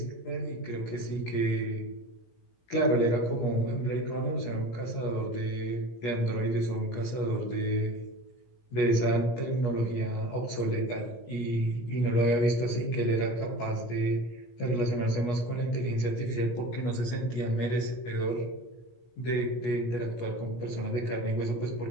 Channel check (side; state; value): right; late; 17 ms